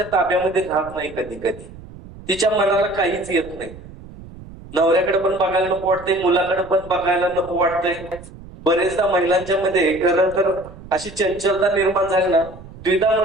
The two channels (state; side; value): noise; right; rumble, 17 dB below the sound